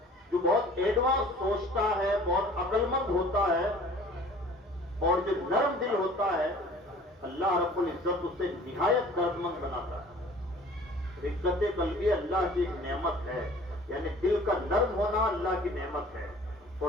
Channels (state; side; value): normal; both; correlation 0.48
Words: جو بہت ایڈوانس سوچتا ہے، بہت عقل مند ہوتا ہے، اور جو نرم دل ہوتا ہے، اللہ رب العزت اسے نہایت درد مند بناتا ہے. رقت قلبی اللہ کی ایک نعمت ہے، یعنی دل کا نرم ہونا اللہ کی نعمت ہے،